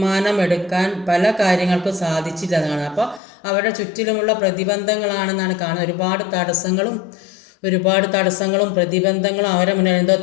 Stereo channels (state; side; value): drops out; right; at 3.2 s